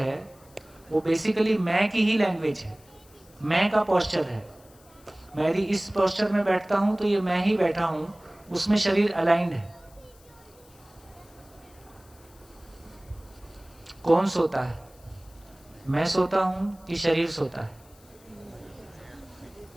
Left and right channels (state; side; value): noise; left; hiss, 27 dB below the sound